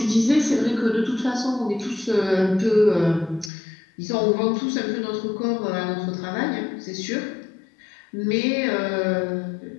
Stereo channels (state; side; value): drops out; right; at 3.5 s